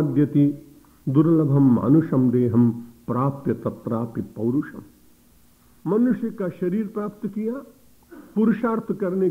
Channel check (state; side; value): identical; both; correlation 1.00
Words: दुर्लभम मानुषम देहम प्राप्य तत्रापि पौरुषम। मनुष्य का शरीर प्राप्त किया, पुरुषार्थ करने